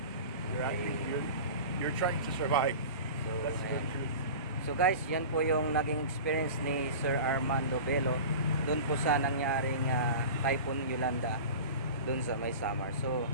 You're acting. You're trying to survive. So, That's the ayan. truth. So guys, yan po yung naging experience ni Sir Armando Bello doon po sa nangyaring Typhoon Yolanda doon sa may Samar. So,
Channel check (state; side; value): inverted; both; correlation -0.34